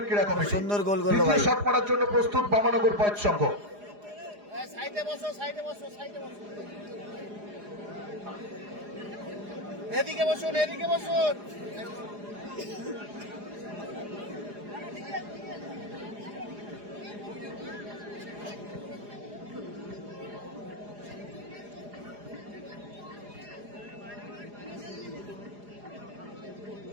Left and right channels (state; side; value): late; left; 4.9 ms